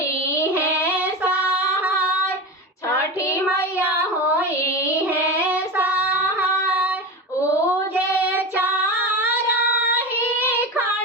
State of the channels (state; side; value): normal; both; correlation 0.24